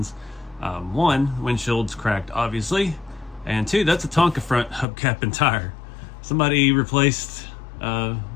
One, windshield's cracked, obviously, and two, that's a Tonka front hubcap and tire. Somebody replaced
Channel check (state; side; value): drops out; right; at 4.9 s